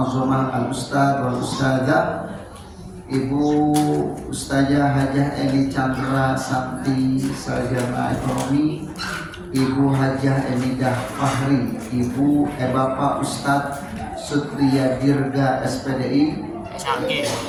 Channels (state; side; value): identical; both; correlation 1.00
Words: al-ustad wal ustadzah Ibu Ustazah Hajah Eni Chandra Santi Sarjana Ekonomi, Ibu Hajah Emidah Fahri, Ibu Bapak Ustadz Sutria Dirga SPDI